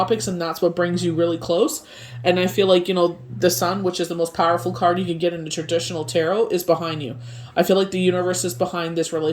and that's what brings you really close. And I feel like the sun, which is the most powerful card you can get in the traditional tarot, is behind you. I feel like the universe is behind this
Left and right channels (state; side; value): identical; both; correlation 1.00